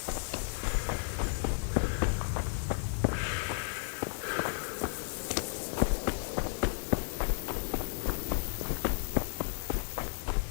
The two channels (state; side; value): silent; right; digital silence